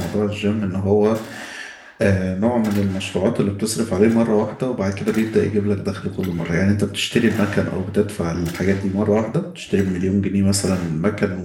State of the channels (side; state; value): both; identical; correlation 1.00